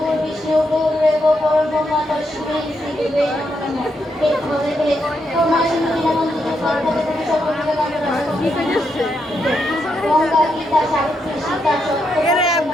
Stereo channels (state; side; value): normal; both; correlation 0.81